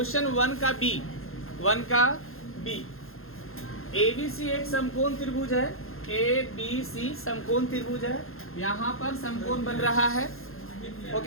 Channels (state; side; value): late; right; 0.61 ms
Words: one का B. ABC एक समकोण त्रिभुज है, ABC समकोण त्रिभुज है। यहाँ पर समकोण बन रहा है,